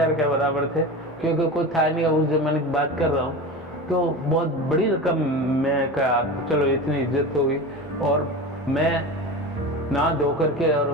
के बराबर थे, क्योंकि कोई था नहीं, उस जमाने की बात कर रहा हूँ। तो बहुत बड़ी रकम, मैं कहा चलो इतनी इज्जत हो गई। और मैं नहा धो करके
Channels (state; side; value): normal; both; correlation 0.28